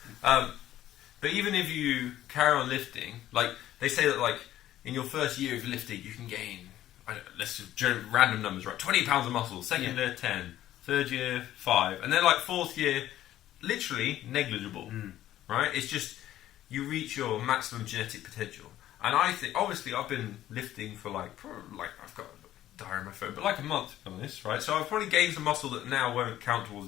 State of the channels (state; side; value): quieter; right; 13.2 dB